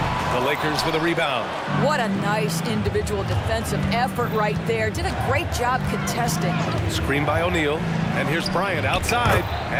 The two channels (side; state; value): both; identical; correlation 1.00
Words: The Lakers with a rebound. What a nice individual defensive effort right there. Did a great job contesting. Screen by O'Neal. And here's Bryant outside.